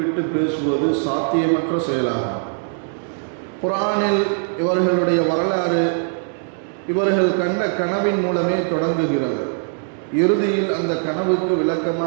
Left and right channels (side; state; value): left; silent; 65 dB below the other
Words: பேசுவது சாத்தியமற்ற செயலாகும். குர்ஆனில் இவர்களுடைய வரலாறு இவர்கள் கண்ட கனவின் மூலமே தொடங்குகிறது. இறுதியில் அந்த கனவுக்கு